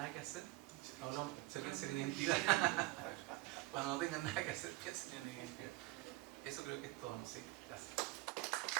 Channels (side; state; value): left; quieter; 20.8 dB